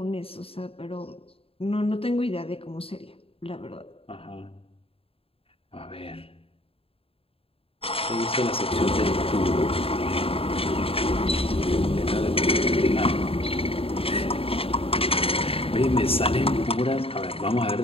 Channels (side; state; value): right; late; 0.27 ms